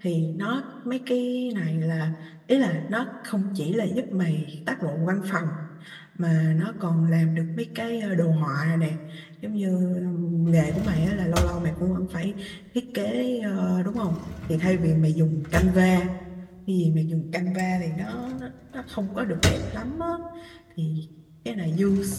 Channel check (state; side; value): identical; both; correlation 1.00